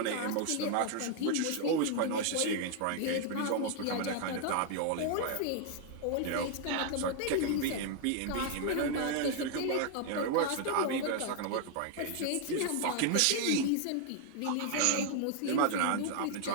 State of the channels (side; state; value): both; different; correlation 0.00